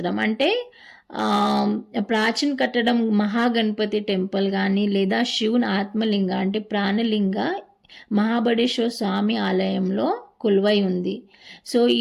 అంటే ప్రాచీన కట్టడం మహాగణపతి టెంపుల్ కానీ లేదా శివుని ఆత్మలింగ అంటే ప్రాణలింగ మహాబడేశ్వర స్వామి ఆలయంలో కొలువై ఉంది. సో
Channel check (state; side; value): identical; both; correlation 1.00